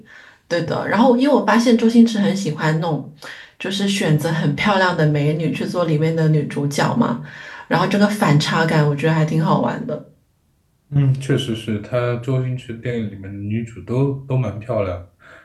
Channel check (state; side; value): identical; both; correlation 1.00